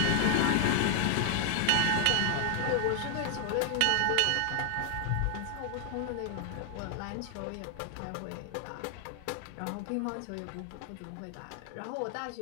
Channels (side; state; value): both; different; correlation 0.00